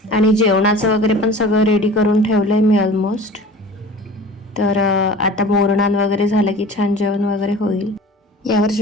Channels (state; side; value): normal; both; correlation 0.40